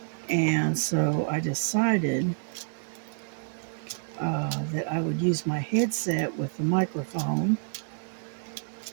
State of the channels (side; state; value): left; silent; 59 dB below the other